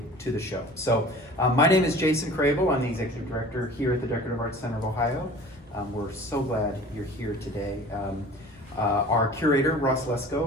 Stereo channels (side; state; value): both; normal; correlation 0.43